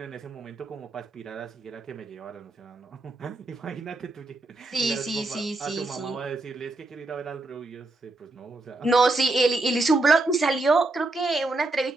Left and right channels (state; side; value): quieter; left; 3.0 dB